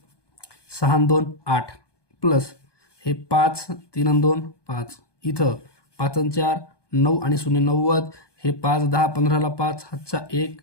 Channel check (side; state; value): right; late; 1.2 ms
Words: 6 आणि 2 8 प्लस हे 5 3 आणि 2 5, इथं 5 आणि 4 9 आणि 0 90, हे 5 10 15ला 5 हातचा 1